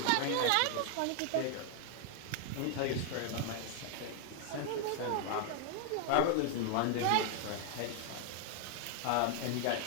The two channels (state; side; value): different; both; correlation 0.00